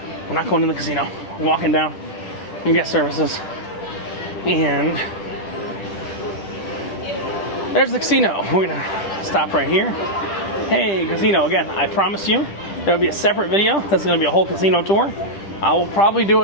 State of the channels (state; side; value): late; right; 10 ms